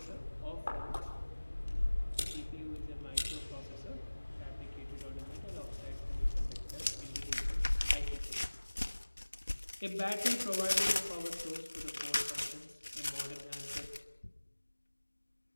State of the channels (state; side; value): inverted; both; correlation -1.00